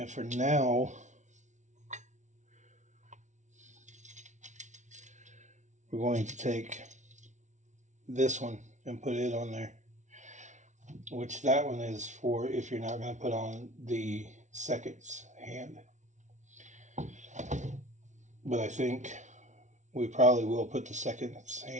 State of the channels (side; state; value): left; late; 0.35 ms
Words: for now, we're going to take this one and put it on there. Which that one is for if you're not going to put on the seconds hand. But I think we probably will put the seconds